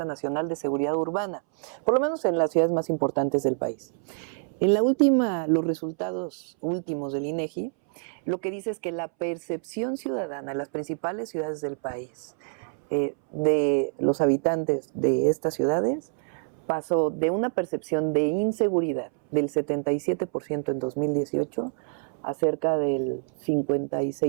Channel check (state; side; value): silent; left; 60 dB below the other